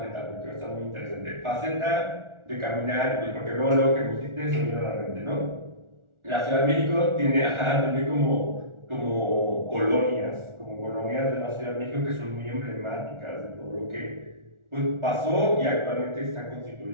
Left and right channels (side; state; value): left; late; 1.4 ms